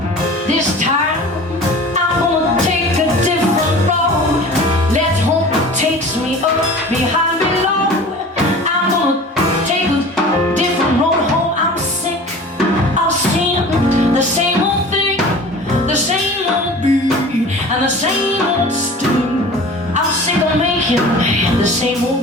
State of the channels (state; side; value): normal; both; correlation 0.40